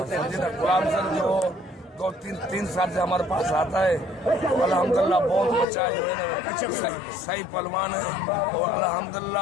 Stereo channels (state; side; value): drops out; right; at 5.7 s